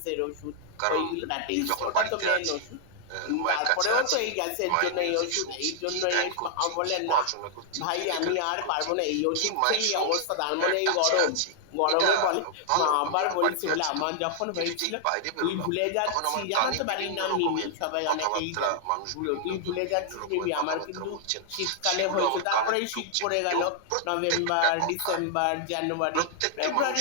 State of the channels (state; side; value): different; both; correlation -0.01